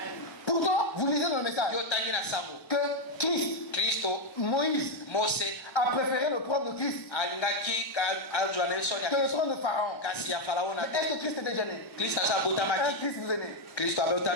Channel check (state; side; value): late; right; 1.1 ms